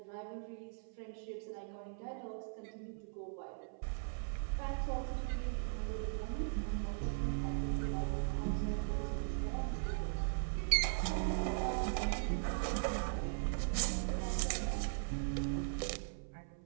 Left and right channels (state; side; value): silent; left; 52 dB below the other